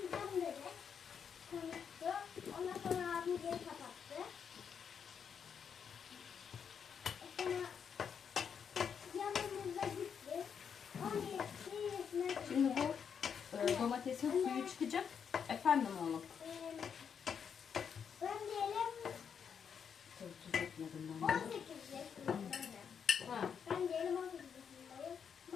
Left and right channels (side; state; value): right; quieter; 7.2 dB